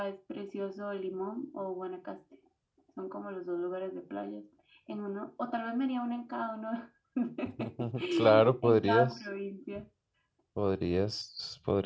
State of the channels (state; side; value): identical; both; correlation 1.00